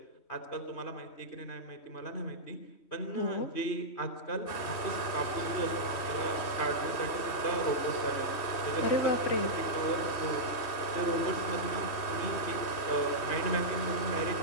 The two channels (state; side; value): late; right; 3.1 ms